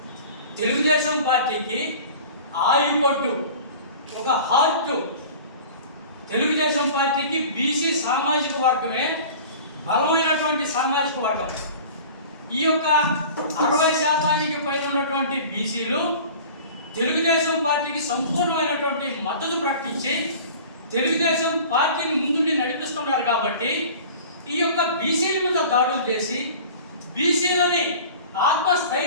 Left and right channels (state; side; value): inverted; both; correlation -0.41